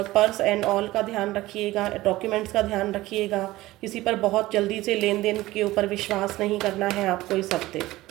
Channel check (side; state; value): left; quieter; 17.6 dB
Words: पर्स एंड ऑल का ध्यान रखिएगा, डॉक्यूमेंट्स का ध्यान रखिएगा। किसी पर बहुत जल्दी से लेन देन के ऊपर विश्वास नहीं करना है आपको इस हफ्ते।